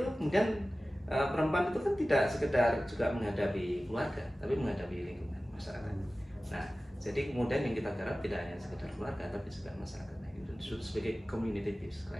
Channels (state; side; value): normal; both; correlation 0.96